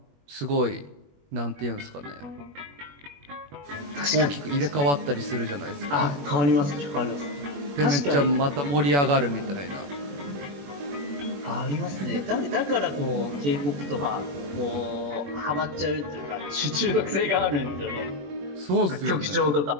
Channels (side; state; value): left; late; 21 ms